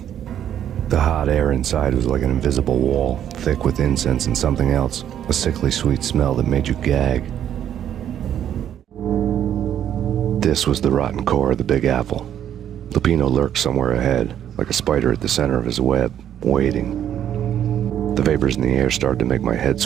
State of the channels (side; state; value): left; quieter; 10.2 dB